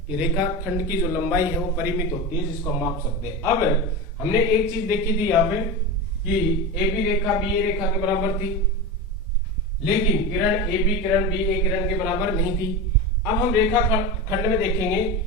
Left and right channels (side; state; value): both; normal; correlation 0.23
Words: कि रेखाखंड की जो लंबाई है वो परिमित होती है, जिसको हम माप सकते हैं। अब हमने एक चीज देखी थी यहाँ पे कि ए बी रेखा बी ए रेखा के बराबर थी, लेकिन किरण ए बी किरण बी ए किरण के बराबर नहीं थी। अब हम रेखा खंड में देखेंगे